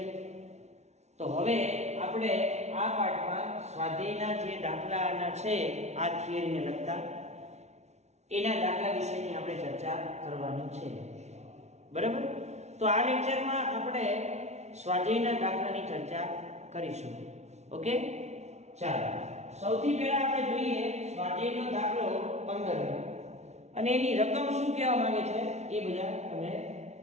તો હવે આપણે આ પાઠમાં સ્વાધ્યાયના જે દાખલાના છે આ થિયરીને લગતા એના દાખલા વિશેની આપણે ચર્ચા કરવાની છે. બરાબર? તો આ લેક્ચરમાં આપણે સ્વાધ્યાયના દાખલાની ચર્ચા કરીશું. ઓકે, ચાલો સૌથી પહેલા આપણે જોઈએ સ્વાધ્યાયનો દાખલો 15 અને એની રકમ શું કહેવા માંગે છે એ બધા તમે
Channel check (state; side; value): late; left; 0.32 ms